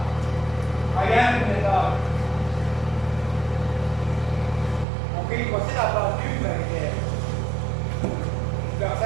seda plaati ümbergi teeb. Peaks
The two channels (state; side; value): drops out; left; at 4.9 s